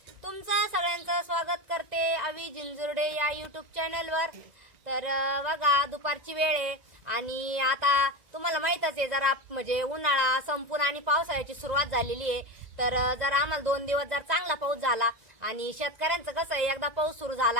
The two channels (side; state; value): left; late; 1.9 ms